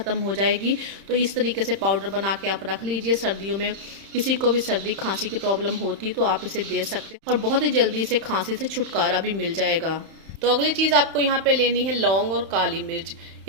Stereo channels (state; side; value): late; left; 31 ms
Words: हो जाएगी। तो इस तरीके से पाउडर बना के आप रख लीजिए। सर्दियों में किसी को भी सर्दी खांसी की प्रॉब्लम होती है तो आप इसे दे सकते हैं और बहुत ही जल्दी से खांसी से छुटकारा भी मिल जाएगा। तो अगली चीज़ आपको यहाँ पे लेनी है लौंग और काली मिर्च।